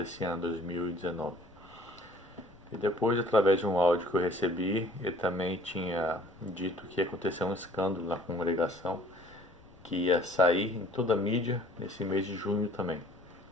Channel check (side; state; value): left; noise; rumble, 26 dB below the sound